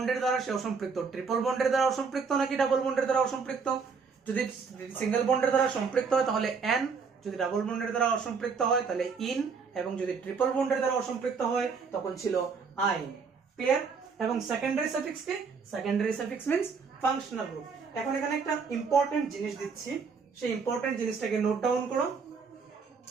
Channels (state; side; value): quieter; left; 5.4 dB